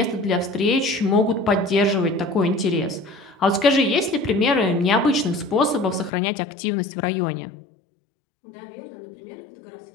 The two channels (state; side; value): drops out; right; at 6.1 s